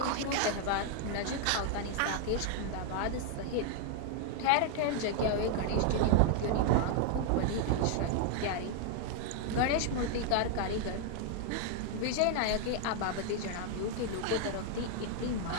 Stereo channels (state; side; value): different; both; correlation 0.00